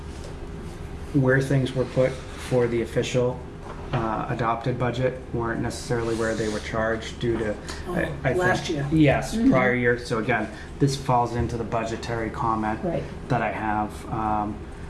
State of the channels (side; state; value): both; identical; correlation 1.00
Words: where things were put for the official adopted budget weren't necessarily where they were charged due to, I think- last year. Yes, prior year. So again, this falls into the budgetary comment Right. that I have.